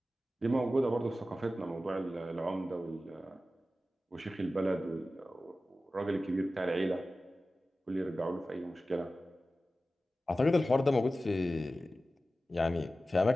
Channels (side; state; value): both; normal; correlation 0.94